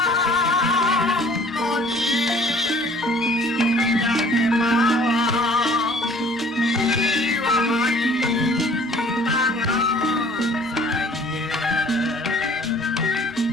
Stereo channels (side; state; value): both; normal; correlation 0.54